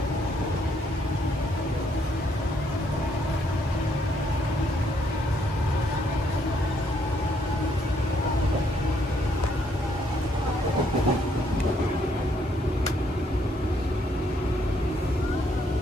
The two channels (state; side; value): normal; both; correlation 0.71